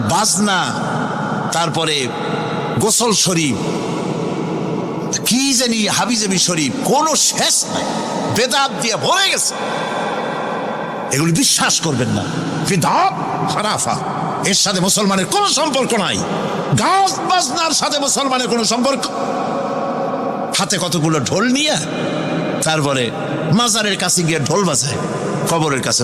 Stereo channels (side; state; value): both; identical; correlation 1.00